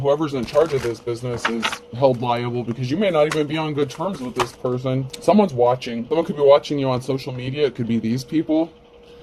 in charge of this business is held liable, because you may not even be on good terms with this person. Someone's watching. Someone could be watching you on social media. It could be these people.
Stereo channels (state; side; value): identical; both; correlation 1.00